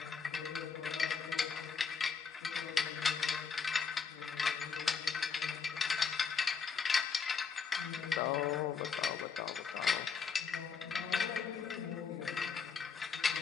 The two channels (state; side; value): quieter; right; 5.8 dB